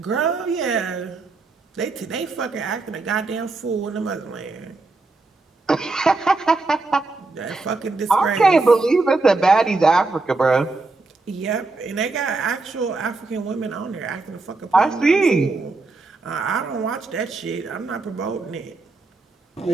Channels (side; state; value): left; quieter; 3.5 dB